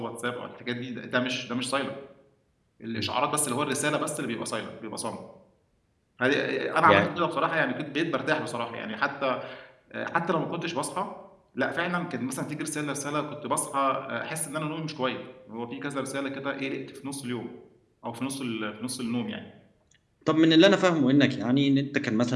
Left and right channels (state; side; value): identical; both; correlation 1.00